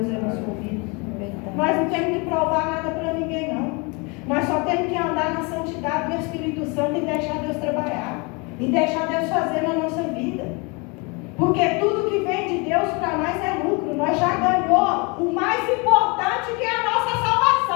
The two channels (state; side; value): quieter; right; 29.8 dB